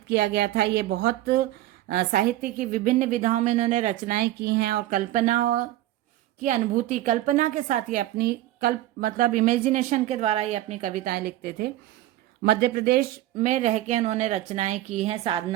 किया गया था। ये बहुत साहित्य की विभिन्न विधाओं में इन्होंने रचनाएं की हैं, और कल्पना की अनुभूति, कल्पना के साथ ये अपनी मतलब इमेजिनेशन के द्वारा ये अपनी कविताएं लिखते थे। मध्य प्रदेश में रह के उन्होंने रचनाएं की हैं,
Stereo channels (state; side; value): quieter; left; 15.0 dB